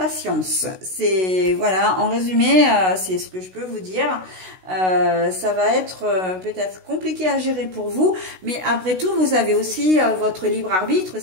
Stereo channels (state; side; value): late; left; 16 ms